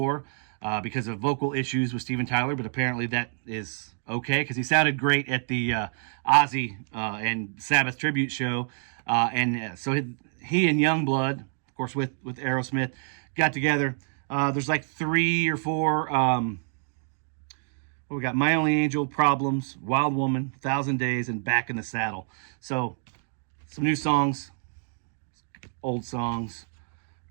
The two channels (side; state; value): left; silent; 59 dB below the other